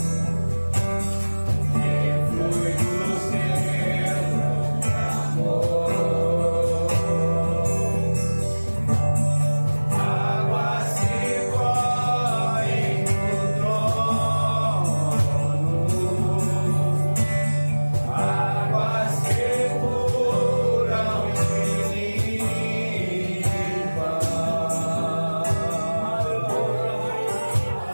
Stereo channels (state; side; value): inverted; both; correlation -1.00